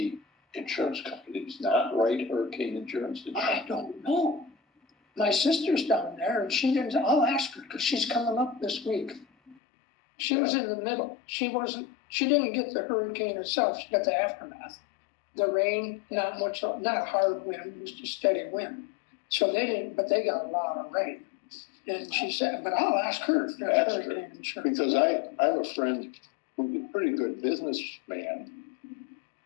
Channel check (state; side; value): drops out; right; at 9.6 s